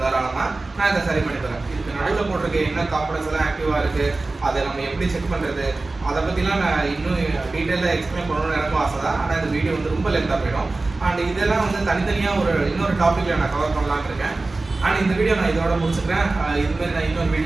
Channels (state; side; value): quieter; left; 3.3 dB